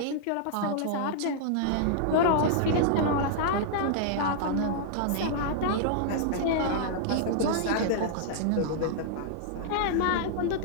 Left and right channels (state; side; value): different; both; correlation -0.01